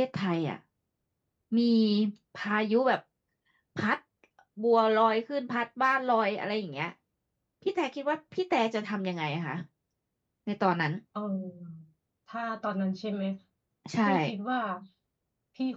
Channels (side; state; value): both; identical; correlation 1.00